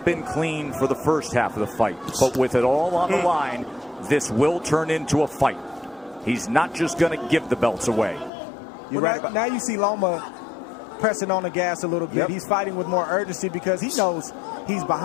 been clean for the first half of the fight, but with it all on the line, this will turn into a fight. He's not just going to give the belts away. Now you see Loma pressing on the gas a little bit. He's fighting with more urgency because he knows he's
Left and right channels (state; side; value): drops out; right; at 8.3 s